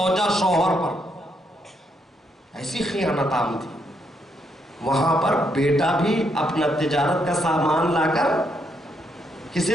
شوہر پر. ایسی خیانت عام تھی. وہاں پر بیٹا بھی اپنا تجارت کا سامان لا کر کسے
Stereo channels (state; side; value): normal; both; correlation 0.76